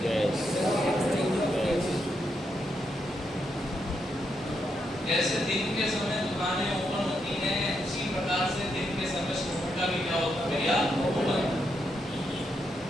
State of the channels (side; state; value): both; normal; correlation 0.81